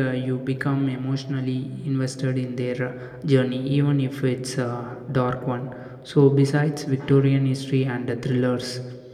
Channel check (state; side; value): identical; both; correlation 1.00